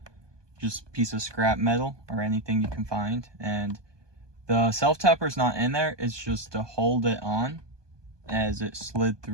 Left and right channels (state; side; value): late; left; 1.2 ms